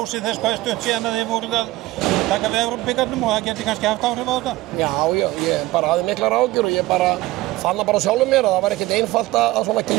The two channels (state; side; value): quieter; left; 18.2 dB